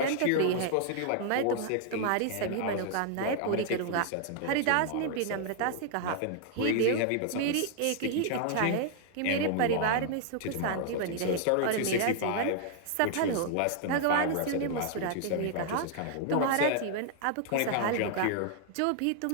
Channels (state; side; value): different; both; correlation 0.00